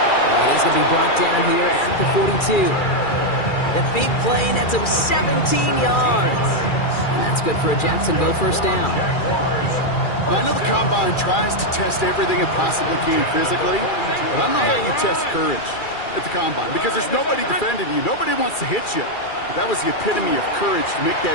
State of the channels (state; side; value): late; right; 2.4 ms